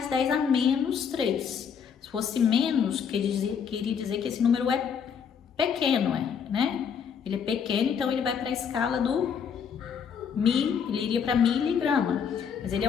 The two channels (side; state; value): right; quieter; 7.1 dB